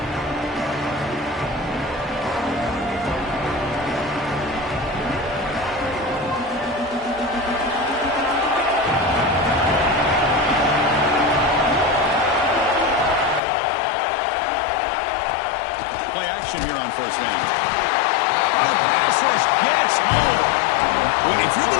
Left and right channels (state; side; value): drops out; right; at 13.4 s